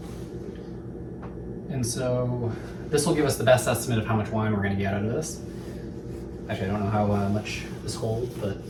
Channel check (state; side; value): identical; both; correlation 1.00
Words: And so this will give us the best estimate of how much wine we're gonna get out of this. Actually, I don't know how much this holds, but